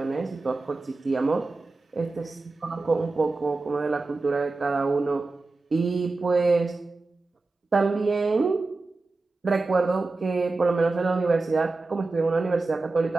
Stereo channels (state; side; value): quieter; left; 3.5 dB